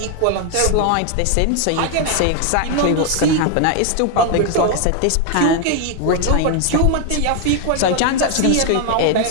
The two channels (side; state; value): both; different; correlation 0.01